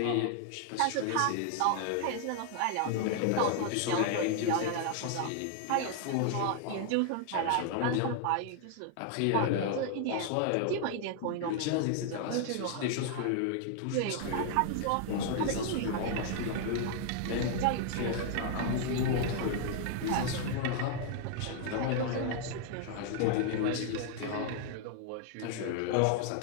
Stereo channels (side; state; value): both; different; correlation 0.00